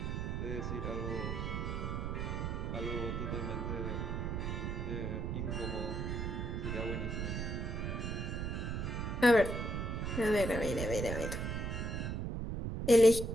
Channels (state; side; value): noise; right; rumble, 2 dB below the sound